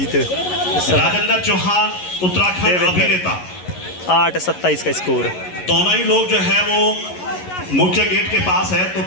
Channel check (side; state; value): right; late; 11 ms